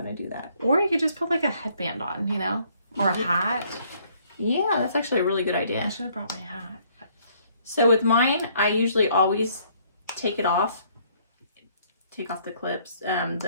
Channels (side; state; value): both; inverted; correlation -0.64